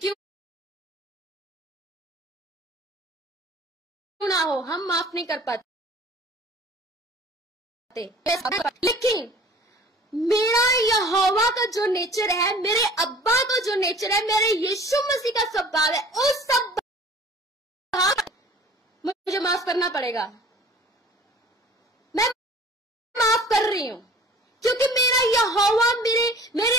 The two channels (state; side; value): normal; both; correlation 0.48